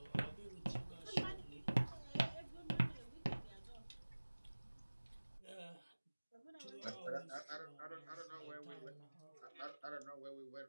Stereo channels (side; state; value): both; inverted; correlation -1.00